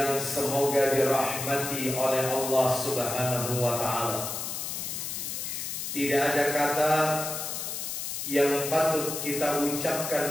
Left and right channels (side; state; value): left; noise; hiss, 4 dB below the sound